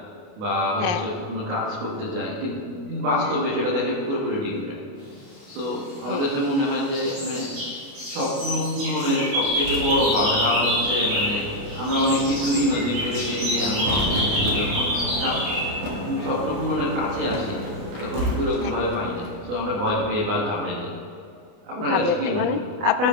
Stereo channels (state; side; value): late; left; 29 ms